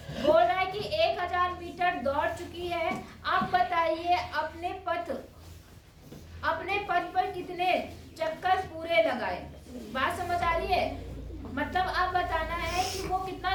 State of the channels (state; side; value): identical; both; correlation 1.00